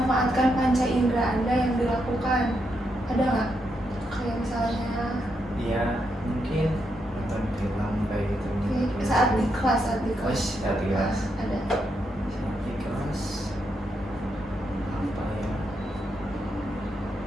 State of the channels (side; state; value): both; normal; correlation 0.81